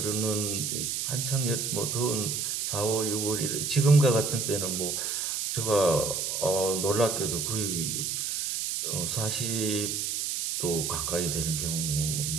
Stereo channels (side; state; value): right; noise; hiss, 1 dB below the sound